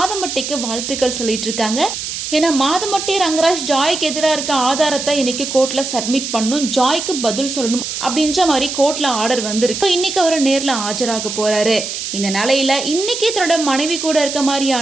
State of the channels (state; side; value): noise; right; hiss, 5 dB below the sound